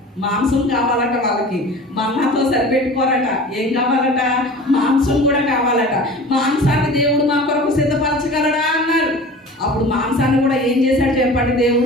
మాంసం కావాలట వాళ్ళకి, మన్నాతో సరిపెట్టుకోరట. ఏం కావాలట? మాంసం కూడా కావాలట. మాంసాన్ని దేవుడు మా కొరకు సిద్ధపరచగలడా అన్నారు. అప్పుడు మాంసాన్ని కూడా ఏం చేశాడు చెప్పండి?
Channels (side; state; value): both; normal; correlation 0.39